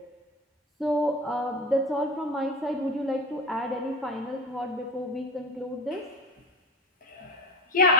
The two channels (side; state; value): both; normal; correlation 0.30